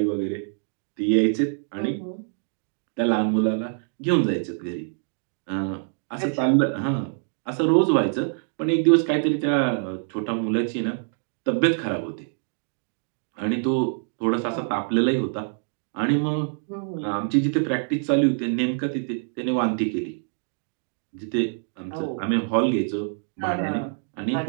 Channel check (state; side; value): silent; left; digital silence